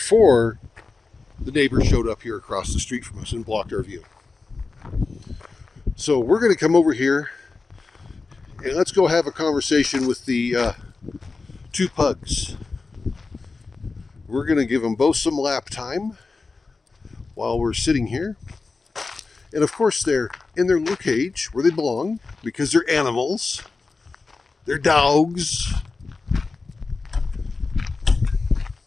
the neighbor showed up here across the street from us and blocked our view. So we're going to come over here and let's go have a conversation with the two pugs. We're going to give them both some lap time while we're sitting here. And of course they're in their little cage where they belong because they're animals. They're dogs.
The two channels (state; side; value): quieter; right; 4.0 dB